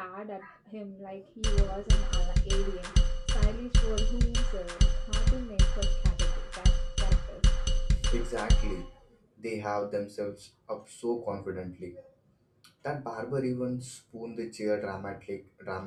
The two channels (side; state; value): both; identical; correlation 1.00